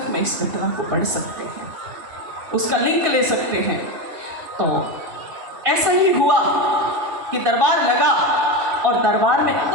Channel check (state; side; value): late; left; 2.7 ms